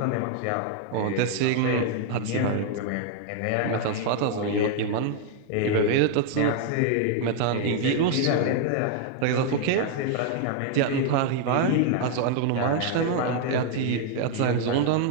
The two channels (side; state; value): both; different; correlation 0.00